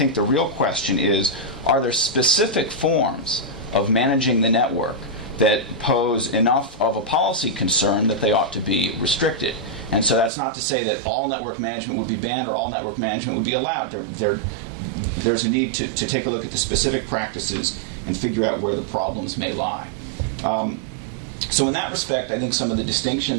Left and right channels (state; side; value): drops out; left; at 10.3 s